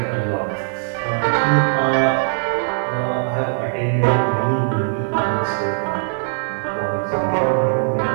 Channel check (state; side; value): silent; left; digital silence